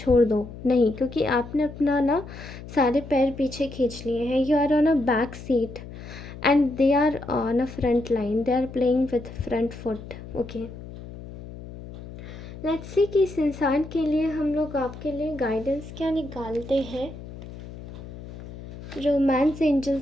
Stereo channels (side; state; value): left; noise; hum, 13 dB below the sound